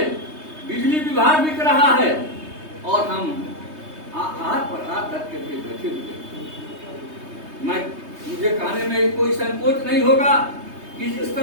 बिजली विभाग बिक रहा है, और हम हाथ पर हाथ रख करके बैठे हुए। मुझे कहने में कोई संकोच नहीं होगा कि जिस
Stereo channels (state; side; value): late; left; 3.2 ms